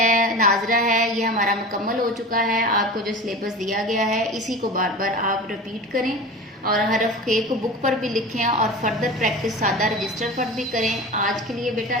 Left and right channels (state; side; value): normal; both; correlation 0.33